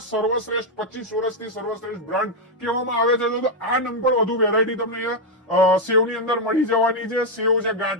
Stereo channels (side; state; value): both; normal; correlation 0.00